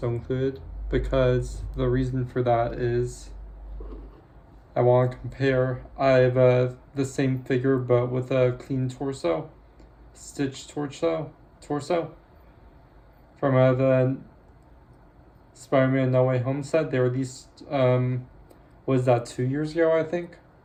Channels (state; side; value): identical; both; correlation 1.00